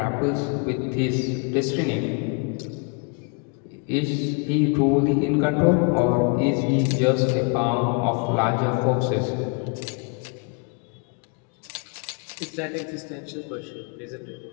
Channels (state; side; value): quieter; right; 35.3 dB